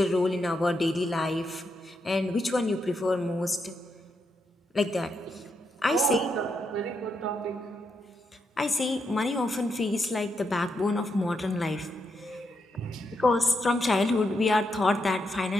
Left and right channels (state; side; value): normal; both; correlation 0.82